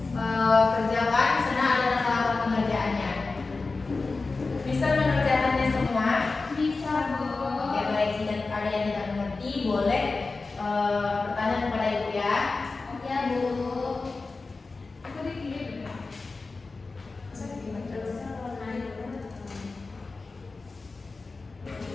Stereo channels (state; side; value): quieter; right; 3.8 dB